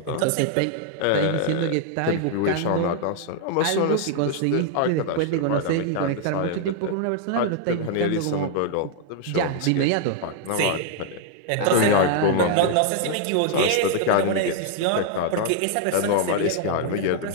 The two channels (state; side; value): different; both; correlation 0.00